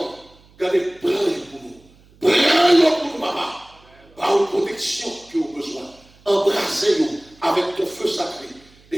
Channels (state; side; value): noise; right; hum, 28 dB below the sound